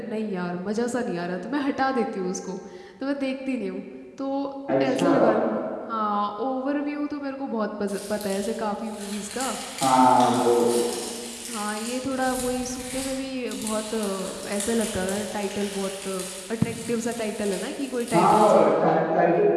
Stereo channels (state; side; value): identical; both; correlation 1.00